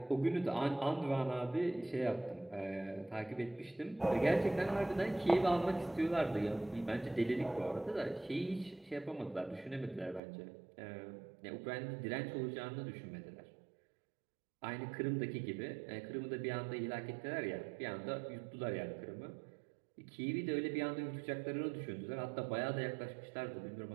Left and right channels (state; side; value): drops out; left; at 10.2 s